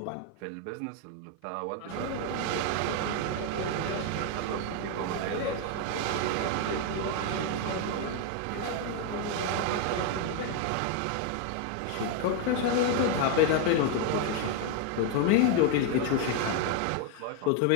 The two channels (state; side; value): different; both; correlation 0.01